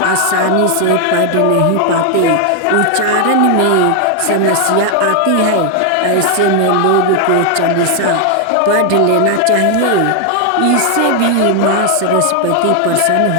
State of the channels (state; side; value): different; both; correlation 0.00